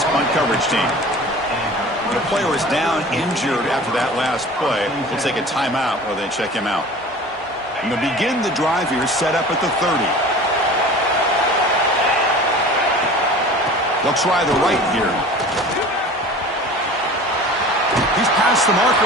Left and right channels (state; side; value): normal; both; correlation 0.41